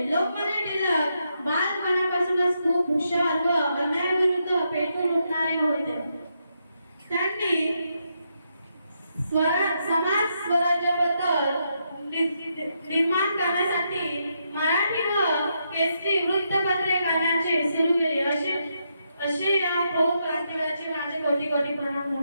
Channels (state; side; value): inverted; both; correlation -0.81